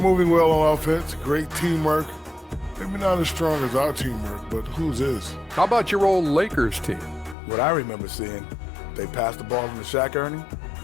well on offense, great teamwork. Maybe not as strong as our teamwork, but whose is? How about your old Lakers team? What I remember seeing, they pass the ball into Shaq Ernie,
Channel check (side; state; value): right; drops out; at 7.4 s